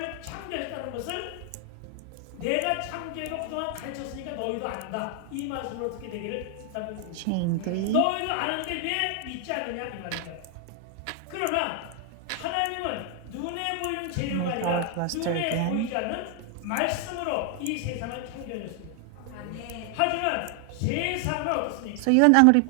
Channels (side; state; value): both; different; correlation 0.00